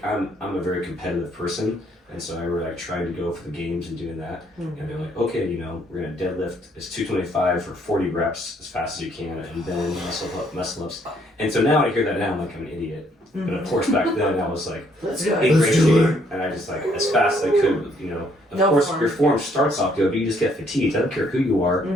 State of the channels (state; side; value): normal; both; correlation 0.67